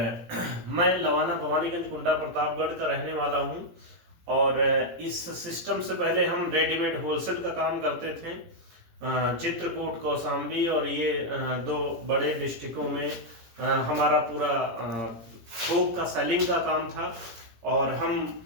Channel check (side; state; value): left; late; 18 ms